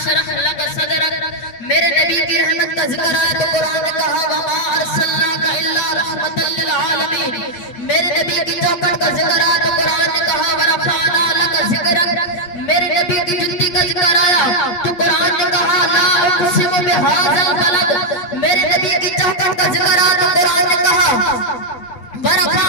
لَكَ صَدْرَكَ، میرے نبی کی رحمت کا ذکر آیا تو قرآن نے کہا وَمَا أَرْسَلْنَاكَ إِلَّا رَحْمَةً لِلْعَالَمِينَ، میرے نبی کی چوکٹ کا ذکر آیا تو قرآن نے کہا وَرَفَعْنَا لَكَ ذِكْرَكَ، میرے نبی کی جنتی کا ذکر آیا تو قرآن نے کہا لا اقسم بهذا البلد، میرے نبی کی چوکٹ کا ذکر آیا تو قرآن نے کہا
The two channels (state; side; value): late; right; 8.7 ms